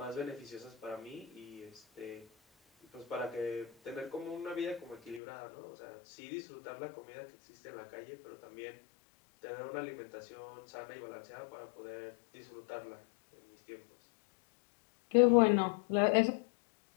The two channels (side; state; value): right; drops out; at 5.2 s